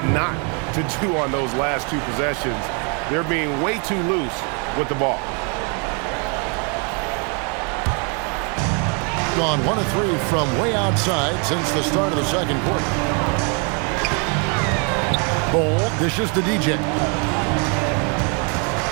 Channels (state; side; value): quieter; left; 36.5 dB